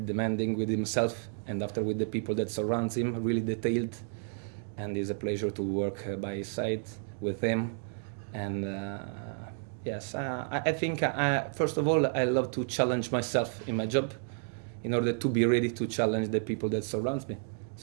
demanding with himself, and after with the people that surrounds him, really detailed. And it's a pleasure to work by his side with him. And yes, I think first of all, I love to challenge myself in my job in order to be ready to challenge the people that surrounds me.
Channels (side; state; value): left; silent; 57 dB below the other